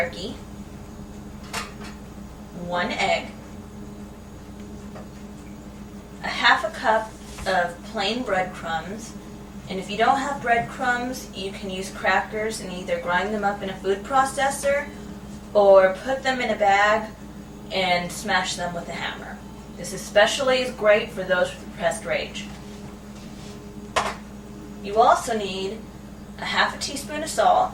1 egg, a half a cup of plain breadcrumbs, and if you don't have breadcrumbs, you can use crackers and either grind them up in a food processor or put them in a bag and smash them with a hammer. This especially is great for those with repressed rage. You also need a half a teaspoon of salt,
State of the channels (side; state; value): both; identical; correlation 1.00